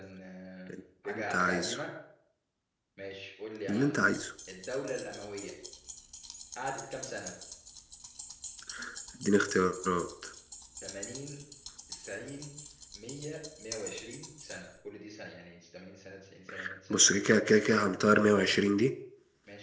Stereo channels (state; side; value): identical; both; correlation 1.00